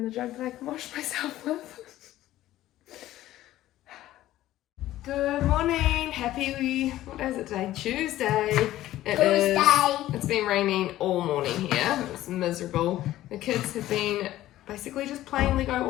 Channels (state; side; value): quieter; right; 14.5 dB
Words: the jug that I can wash myself with. Good morning, happy, what is it today? Tuesday. It's been raining all morning here. It's miserable. The kids have been basically just playing Lego